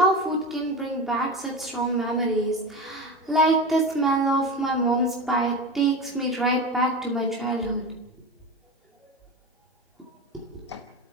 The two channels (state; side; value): normal; both; correlation 0.25